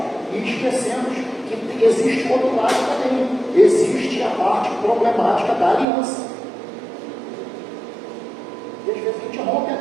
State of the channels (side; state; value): left; drops out; at 5.9 s